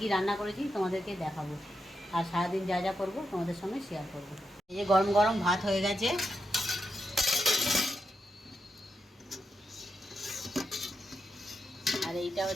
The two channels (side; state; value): both; normal; correlation 0.86